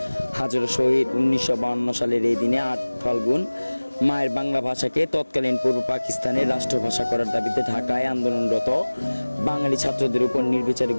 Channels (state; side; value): inverted; both; correlation -1.00